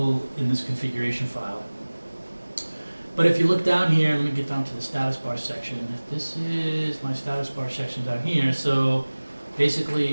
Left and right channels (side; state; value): both; inverted; correlation -1.00